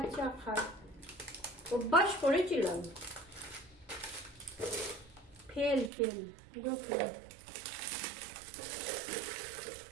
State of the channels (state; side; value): drops out; left; at 5.9 s